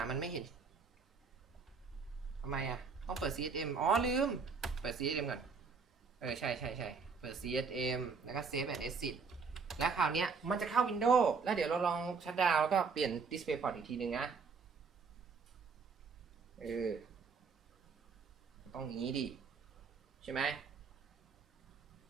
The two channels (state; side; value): quieter; left; 5.2 dB